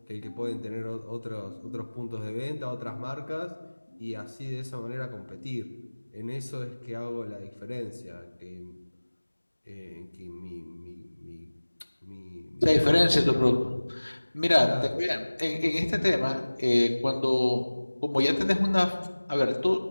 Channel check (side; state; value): both; inverted; correlation -1.00